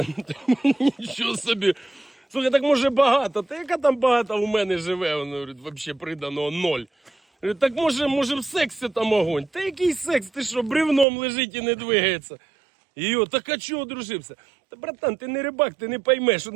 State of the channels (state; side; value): drops out; left; at 11.1 s